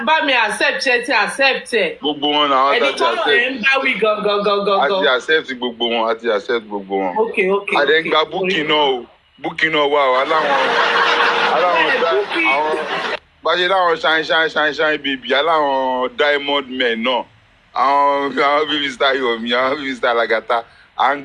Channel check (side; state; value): both; identical; correlation 1.00